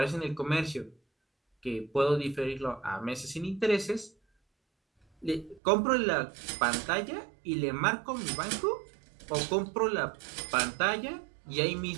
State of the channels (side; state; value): left; drops out; at 5.6 s